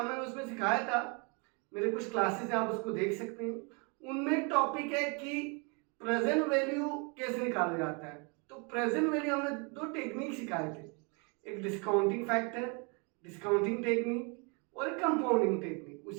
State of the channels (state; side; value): quieter; left; 33.8 dB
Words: मैंने उसमें सिखाया था, मेरे कुछ क्लासेस हैं आप उसको देख सकते हैं। उनमें टॉपिक है कि प्रेजेंट वैल्यू कैसे निकाला जाता है। तो प्रेजेंट वैल्यू हमने दो टेक्निक सिखाए थे, एक डिस्काउंटिंग फैक्टर, डिस्काउंटिंग टेक्निक और एक कंपाउंडिंग टेक्निक।